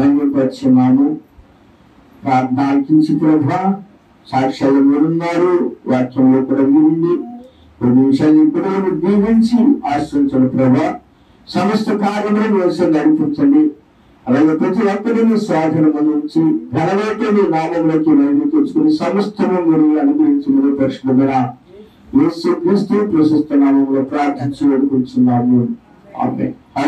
ప్రార్థన ఆలకించి ప్రభా, సాక్ష్యాలు మీరున్నారు, వాక్యంలో కూడా మీరుంది. 2 నిమిషాలు ఇప్పుడు దీవించి ఆశ్రయించండి ప్రభా. సమస్త కార్యములను వేసి నడిపించండి. అలాగే ప్రతి ఒక్కరిని స్వాధీనం నుంచి ఘనమైన నీ నామంలోకి మహిమ తెచ్చుకుని సమస్తము మీరు అనుగ్రహించమని పరిశుద్ధమైన యేసుక్రీస్తు ప్రశస్త నామంలో ప్రార్థించి వేడుకుంటున్నాము. ఆమేన్.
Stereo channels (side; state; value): both; identical; correlation 1.00